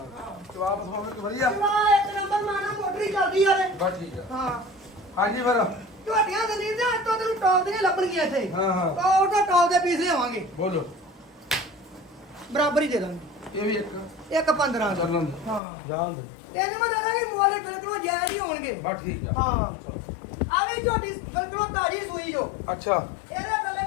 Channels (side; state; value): right; drops out; at 15.6 s